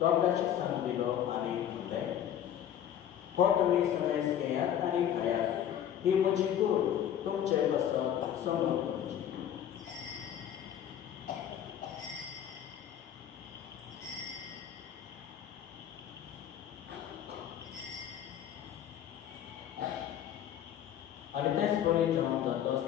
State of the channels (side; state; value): right; quieter; 10.2 dB